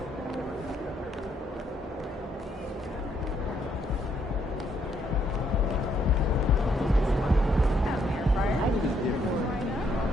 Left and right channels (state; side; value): normal; both; correlation 0.72